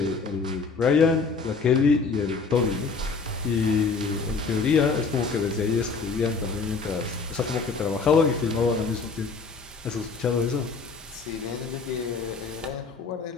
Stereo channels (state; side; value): quieter; right; 4.6 dB